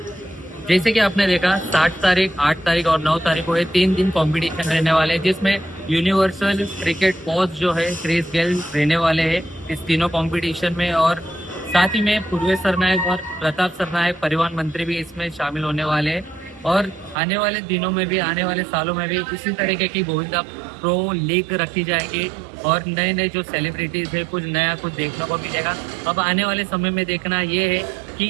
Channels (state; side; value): drops out; left; at 17.2 s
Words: जैसे कि आपने देखा 7 तारीख, 8 तारीख और 9 तारीख को ये 3 दिन कंपटीशन रहने वाले हैं जिसमें यूनिवर्सल क्रिकेट कोच जो है क्रिस गेल रहने वाले हैं इस तीनों कंपटीशन में और साथ ही में पूर्व सरनाईक और प्रताप सरनाईक परिवहन मंत्री भी इसमें शामिल होने वाले हैं और आने वाले दिनों में भी, आने वाले सालों में भी इसी तरीके की गोविंदा प्रो लीग रखी जाएगी और नए नए जो सेलिब्रिटीज है कुछ नया कुछ देखने को मिलेगा। अब आने वाले समय में देखना ये है